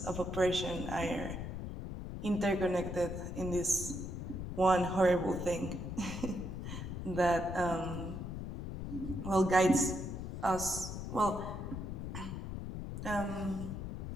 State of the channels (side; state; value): left; noise; rumble, 6 dB below the sound